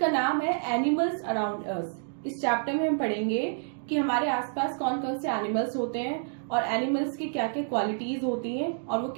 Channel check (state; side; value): silent; left; digital silence